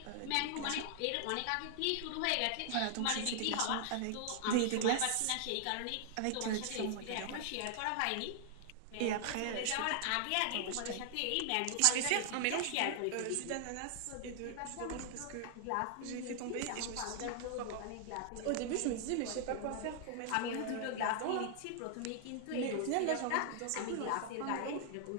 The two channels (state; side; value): different; both; correlation 0.00